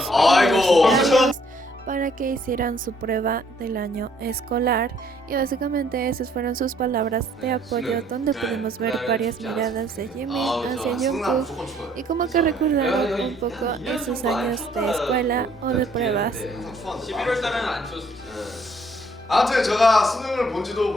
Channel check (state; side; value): normal; both; correlation 0.64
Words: BTS para que hicieran su prueba del año escolar y básicamente esas fueron sus palabras de apoyo, donde pudimos ver varias miradas de Jimin hacia Jungkook y como que recordaron un poco esos años de escuela o de pruebas. 11월달은 안 쳤어요. 아무튼 제가 수능을 본 지도